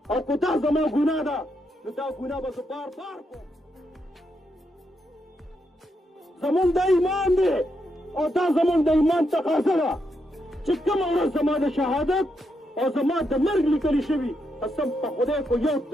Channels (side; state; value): both; normal; correlation 0.81